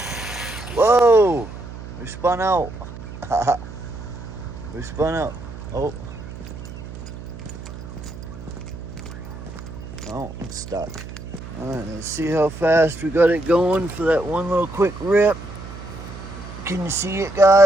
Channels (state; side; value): noise; right; hum, 12 dB below the sound